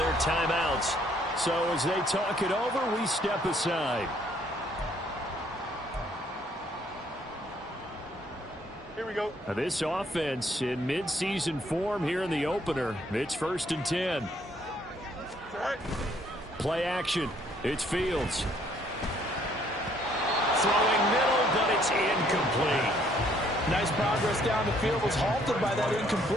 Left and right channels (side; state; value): both; normal; correlation 0.65